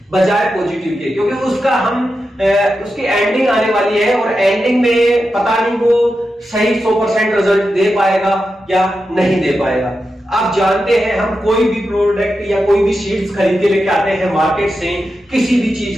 बजाय पॉजिटिव के, क्योंकि उसका उसकी एंडिंग आने वाली है और एंडिंग में पता नहीं वो सही 100% रिजल्ट दे पाएगा या नहीं दे पाएगा। आप जानते हैं, हम कोई भी प्रोडक्ट या कोई भी सीड्स खरीद के लेके आते हैं मार्केट से, किसी भी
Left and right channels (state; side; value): normal; both; correlation 0.89